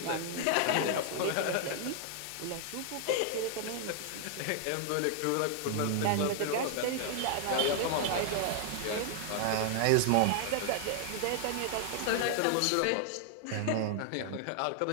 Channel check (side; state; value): both; different; correlation 0.00